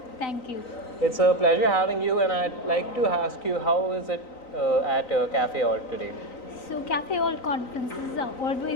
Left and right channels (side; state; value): right; late; 3.9 ms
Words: Thank you. It's a pleasure having you and I'd like to ask you how is it at CafeAlt today? So CafeAlt conferences are